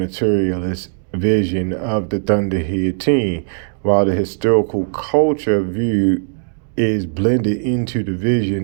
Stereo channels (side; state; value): left; silent; digital silence